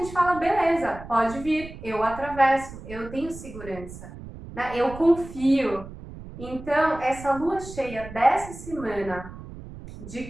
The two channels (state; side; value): noise; right; rumble, 14 dB below the sound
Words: fala, beleza, pode vir, eu atravesso, eu tenho segurança, né? Eu confio. Então, essa lua cheia dessa semana,